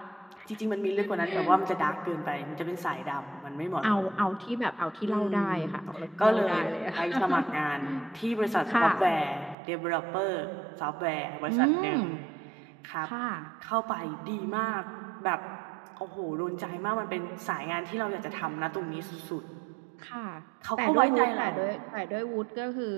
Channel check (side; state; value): left; drops out; at 9.6 s